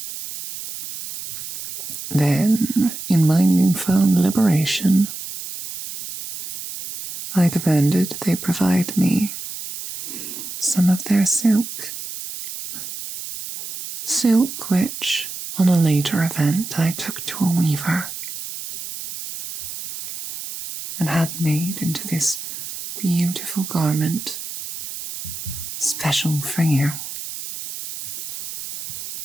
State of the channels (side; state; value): right; noise; hiss, 8 dB below the sound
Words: Then, in my newfound liberation, I demanded they provide me some of their silk. Silk which, on a later event, I took to a weaver and had made into this beautiful garment special for you.